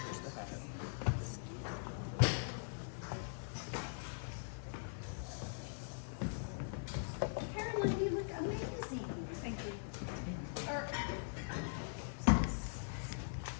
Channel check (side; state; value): right; silent; digital silence